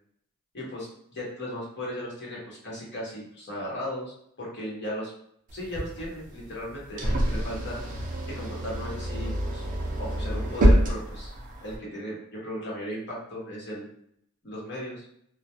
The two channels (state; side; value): normal; both; correlation 0.76